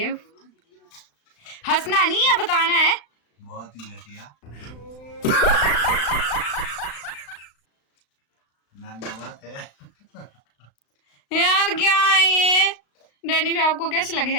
हंसना नहीं है, बताना है। बहुत ही घटिया। नमक है यार, क्या है ये? डैनी भी आपको कैसे लगेगा?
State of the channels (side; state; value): right; late; 35 ms